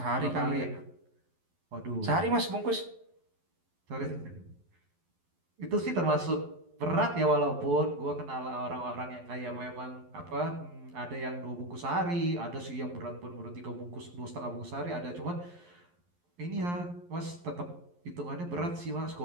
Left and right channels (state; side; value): late; left; 11 ms